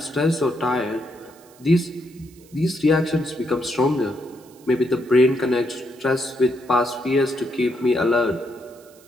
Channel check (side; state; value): right; noise; hiss, 27 dB below the sound